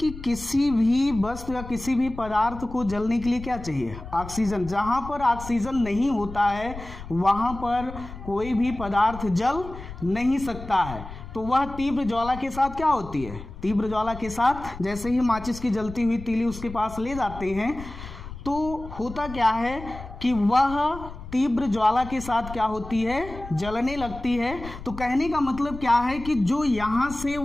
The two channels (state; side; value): noise; left; rumble, 13 dB below the sound